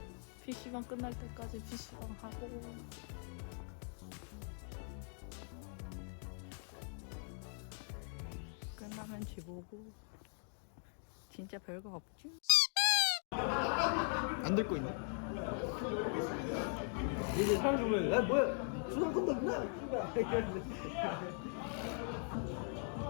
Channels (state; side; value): silent; right; 51 dB below the other